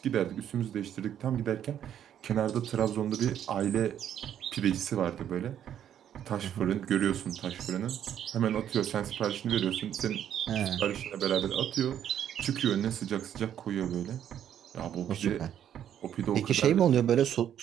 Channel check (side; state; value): left; quieter; 10.0 dB